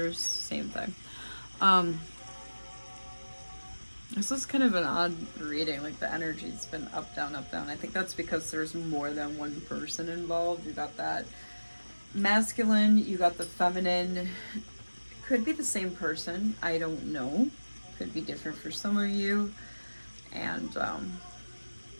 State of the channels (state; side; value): inverted; both; correlation -1.00